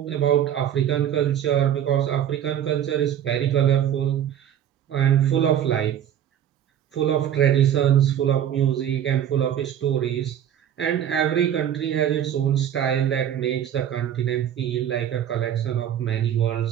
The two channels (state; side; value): quieter; left; 10.1 dB